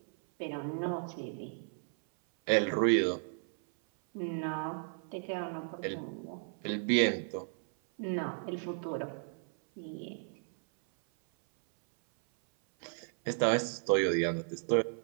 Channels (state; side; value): silent; left; 55 dB below the other